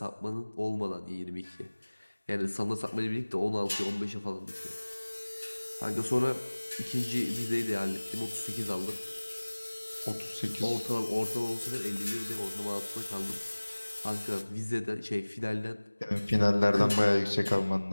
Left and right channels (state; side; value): inverted; both; correlation -1.00